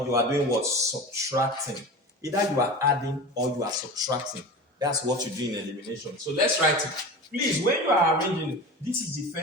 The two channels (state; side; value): normal; both; correlation 0.31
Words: you are doing what? Subtracting. Either you are adding or you are subtracting. That's what you do in elimination. So let's write it. Please, when you are arranging, this is the